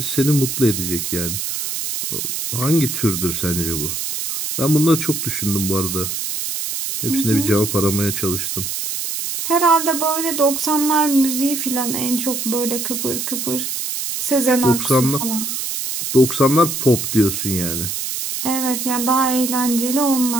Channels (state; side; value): noise; right; hiss, 3 dB below the sound